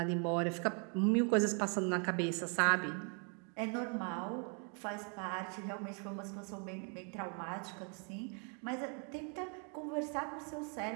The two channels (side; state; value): left; quieter; 38.8 dB